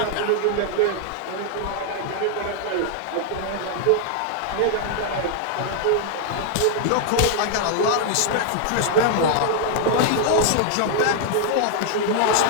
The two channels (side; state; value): both; different; correlation 0.00